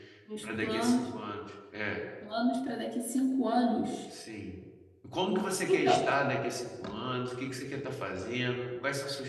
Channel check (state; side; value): identical; both; correlation 1.00